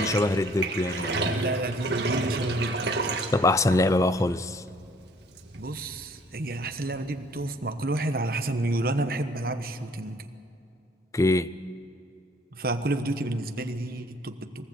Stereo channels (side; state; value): both; normal; correlation 0.59